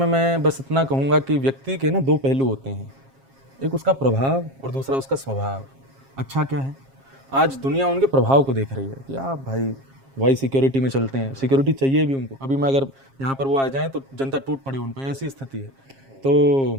मैं बस इतना कहूँगा कि व्यक्ति के ना दो पहलू होते हैं, एक उसका प्रभाव और दूसरा उसका स्वभाव। अच्छा क्या है, आज दुनिया उनके प्रभाव को देख रही है कि आप भाई सिक्योरिटी में चलते हैं, सिक्योरिटी चाहिए भी उनको। अभी मैं अगर यहाँ पर वो आ जाएं तो जनता टूट पड़े उन पर, ऐसी स्थिति है। तो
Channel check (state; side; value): late; left; 7.4 ms